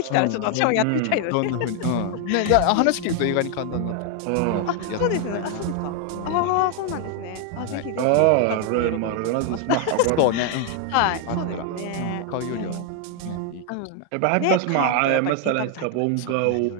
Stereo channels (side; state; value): both; different; correlation 0.00